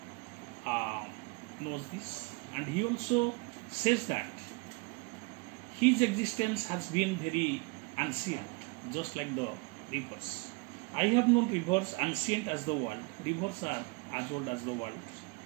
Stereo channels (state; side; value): quieter; left; 27.3 dB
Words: knows this. And he also says that his existence has been very ancient, just like the rivers. I have known rivers ancient as the world. Rivers are as old as the world